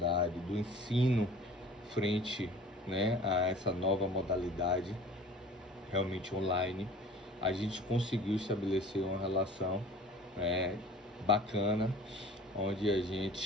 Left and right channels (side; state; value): both; normal; correlation 0.45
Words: do ensino frente, né, a essa nova modalidade realmente online. A gente conseguiu estabelecer uma relação bacana, onde a gente